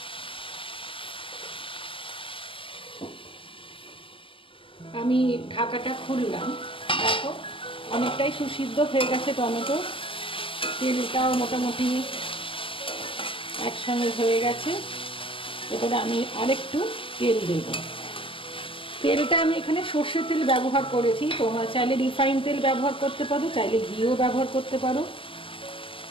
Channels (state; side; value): late; right; 0.25 ms